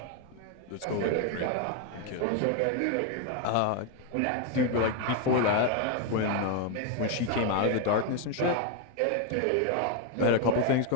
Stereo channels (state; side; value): different; both; correlation 0.01